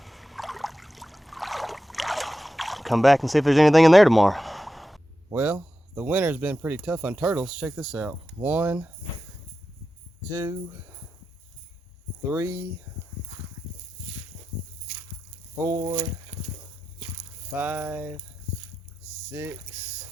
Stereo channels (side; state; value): both; normal; correlation 0.91